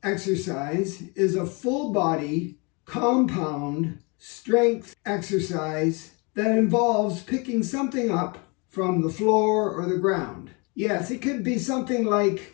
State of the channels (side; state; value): right; quieter; 30.5 dB